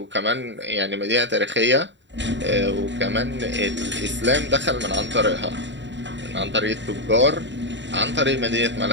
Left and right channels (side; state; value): left; late; 0.53 ms